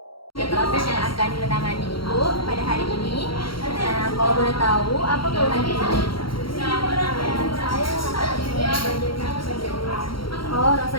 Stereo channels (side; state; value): right; late; 0.73 ms